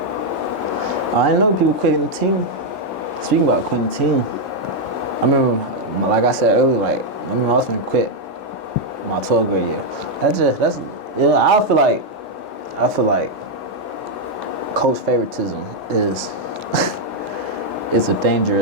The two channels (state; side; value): normal; both; correlation 0.00